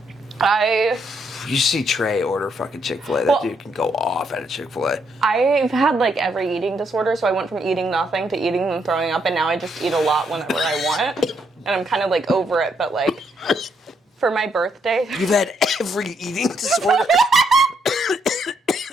You see Trey order fucking Chick-fil-A. That dude can go off at a Chick-fil-A. I've had like every eating disorder, so I went from eating nothing to eating and throwing up, and now I just eat a lot whenever I want. And I'm kind of like over it, but like for my birthday. You've had every eating disorder?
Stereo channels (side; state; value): both; normal; correlation 0.75